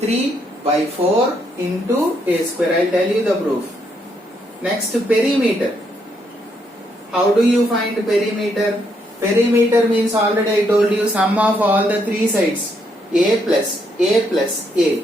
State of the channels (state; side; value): normal; both; correlation 0.75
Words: by 4 into a square. I'll tell you the proof. Next, perimeter. How do you find perimeter? Perimeter means, already I told you, sum of all the three sides. A plus A.